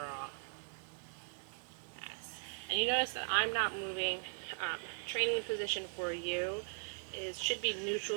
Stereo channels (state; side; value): silent; left; 52 dB below the other